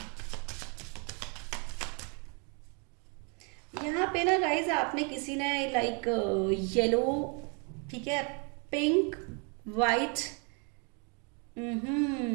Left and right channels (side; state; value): left; quieter; 35.8 dB